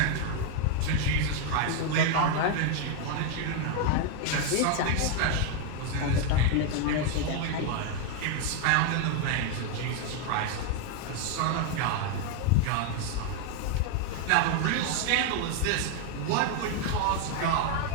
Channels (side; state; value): both; different; correlation 0.01